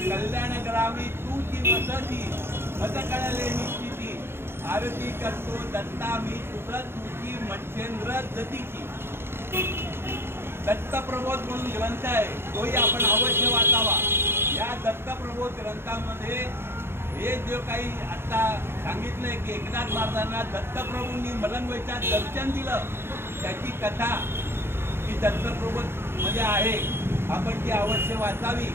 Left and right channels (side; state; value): left; late; 0.11 ms